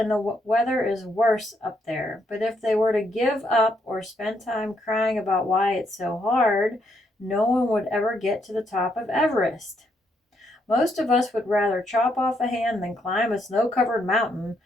the weather is worse up there. But if they were to give up or spend time crying about why it's so hard, no one would ever get to the top of Everest. Most of us would rather chop off a hand than climb a snow-covered mountain,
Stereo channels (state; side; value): normal; both; correlation 0.75